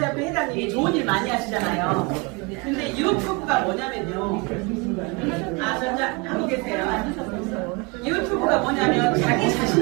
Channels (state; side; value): quieter; left; 28.6 dB